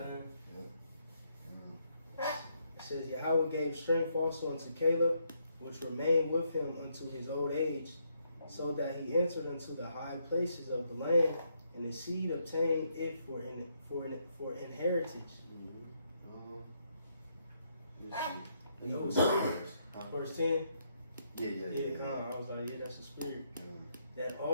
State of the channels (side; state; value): both; inverted; correlation -0.75